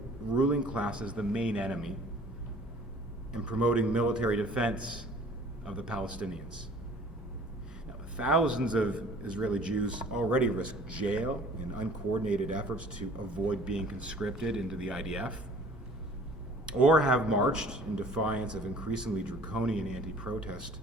ruling class as the main enemy and promoting military defense of the Palestinians. Now, thousands of Israeli Jews already risk jail in uncoordinated efforts to avoid being conscripted into the IDF, or have marched in defiance of increasingly draconian anti-protest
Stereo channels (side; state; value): both; normal; correlation 0.50